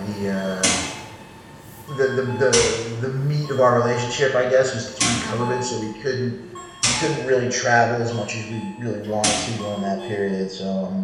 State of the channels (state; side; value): identical; both; correlation 1.00